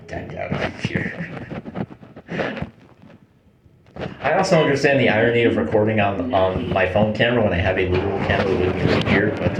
decked out up here. I also understand the irony of recording on my phone camera when I have a literal camera with me right here, but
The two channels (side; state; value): both; identical; correlation 1.00